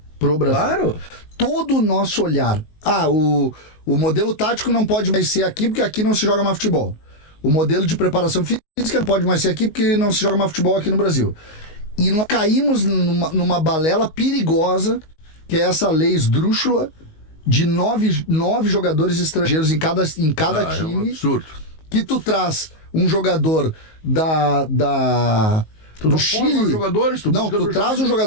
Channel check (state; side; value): late; right; 19 ms